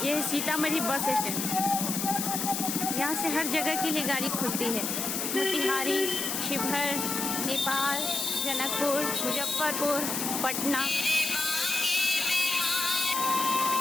ये सीतामढ़ी बस स्टैंड। यहाँ से हर जगह के लिए गाड़ी खुलती है। मोतिहारी, शिवहर, नेपाल, जनकपुर, मुजफ्फरपुर, पटना।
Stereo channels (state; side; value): noise; left; hiss, 2 dB below the sound